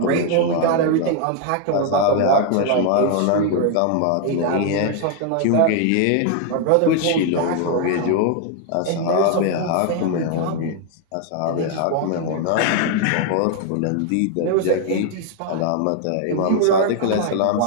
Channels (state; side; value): different; both; correlation 0.00